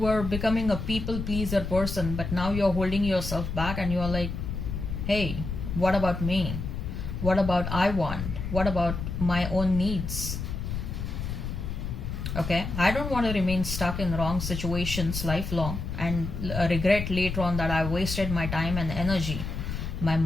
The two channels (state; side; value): noise; left; rumble, 5 dB below the sound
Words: becoming a people pleaser person, but now you're holding yourself back and you're like, hey, what about me? What about I want? What about my own needs? Okay, I don't want to remain stuck in wrong situations lifelong and regret later on that I wasted my time and energy, my